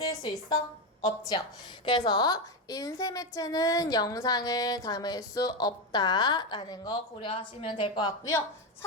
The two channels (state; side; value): normal; both; correlation 0.12